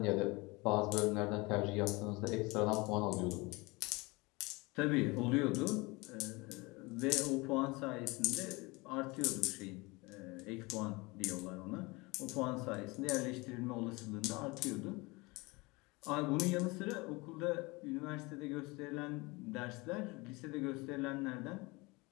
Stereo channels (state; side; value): quieter; right; 24.6 dB